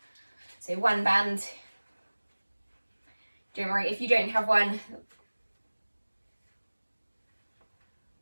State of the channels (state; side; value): inverted; both; correlation -1.00